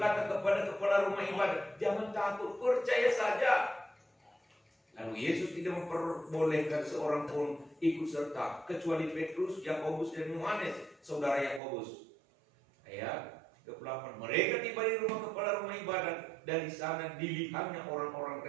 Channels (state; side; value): drops out; left; at 11.6 s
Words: kepada kepala rumah ibadat, jangan takut, percaya saja. Lalu Yesus tidak memperbolehkan seorang pun ikut serta kecuali Petrus, Yakobus dan Yohanes, saudara Yakobus. Ayat 28. Mereka tiba di rumah kepala rumah ibadat dan di sana dilihatnya orang-orang